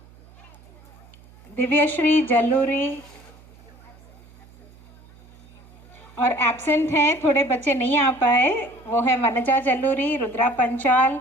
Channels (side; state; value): right; noise; hum, 25 dB below the sound